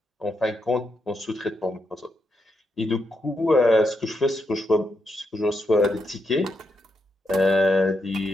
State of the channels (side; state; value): both; normal; correlation 0.83